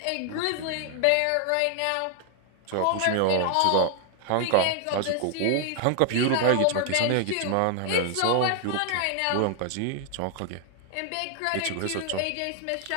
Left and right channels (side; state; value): both; different; correlation 0.00